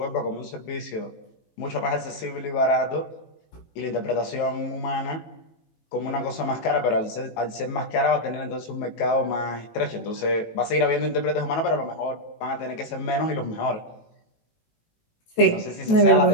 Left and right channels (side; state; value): right; late; 19 ms